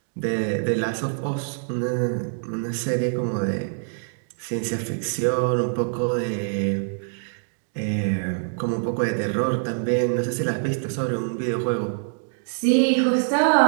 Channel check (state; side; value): silent; left; digital silence